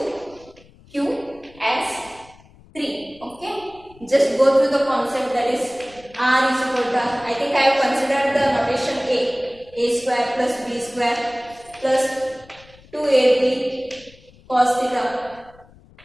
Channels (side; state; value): left; noise; rumble, 26 dB below the sound